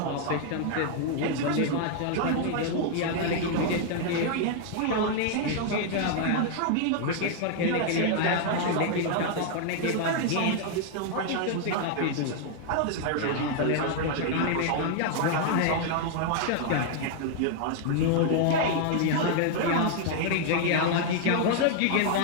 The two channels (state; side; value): different; both; correlation 0.00